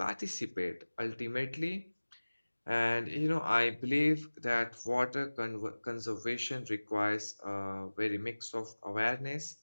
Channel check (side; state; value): both; inverted; correlation -1.00